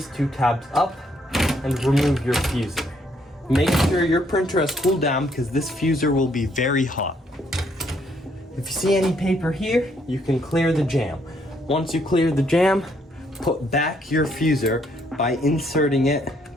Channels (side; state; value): both; normal; correlation 0.70